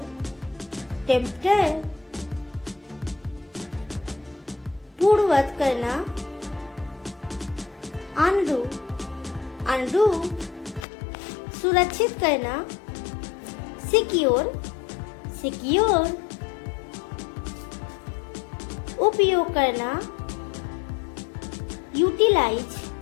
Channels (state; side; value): drops out; right; at 10.9 s